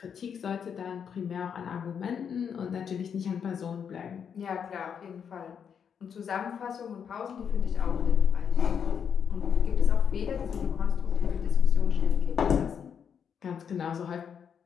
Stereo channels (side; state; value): right; quieter; 7.4 dB